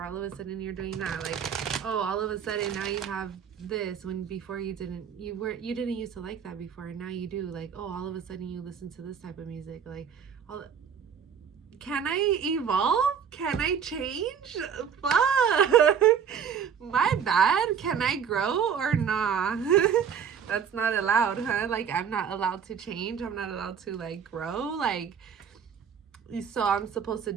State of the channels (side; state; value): left; quieter; 7.5 dB